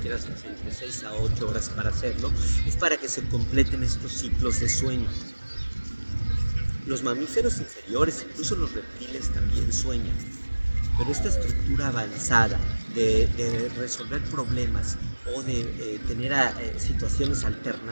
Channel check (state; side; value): inverted; both; correlation -1.00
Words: entre 6 a 8 horas para hacerlo, es para que se completen estos ciclos de sueño. Los mamíferos inferiores, incluso los reptiles, también sueñan. Pero esta estructura avanzada de resolver problemas o de tener situaciones